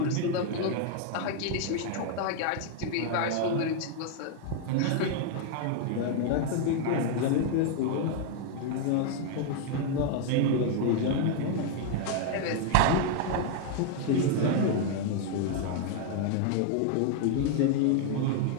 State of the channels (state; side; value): different; both; correlation 0.00